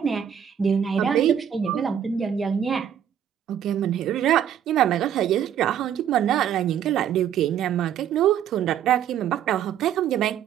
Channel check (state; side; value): quieter; left; 9.4 dB